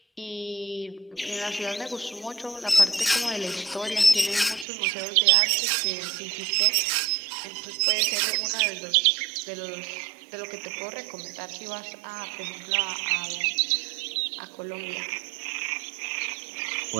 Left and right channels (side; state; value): left; drops out; at 4.7 s